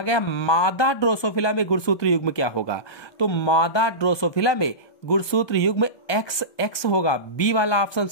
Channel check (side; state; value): right; late; 1.2 ms